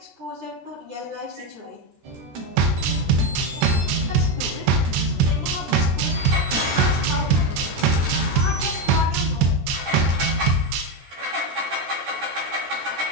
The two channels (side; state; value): left; late; 13 ms